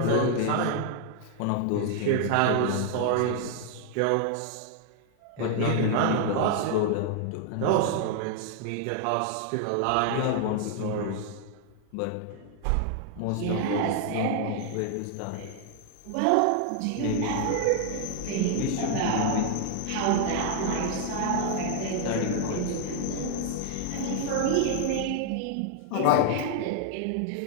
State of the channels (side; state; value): both; different; correlation 0.00